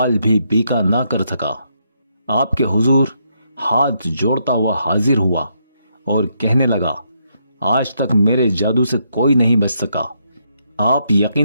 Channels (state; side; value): inverted; both; correlation -0.77